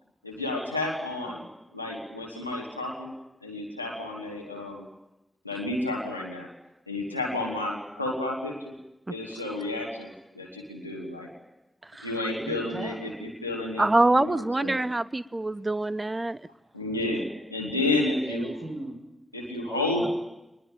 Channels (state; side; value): normal; both; correlation 0.58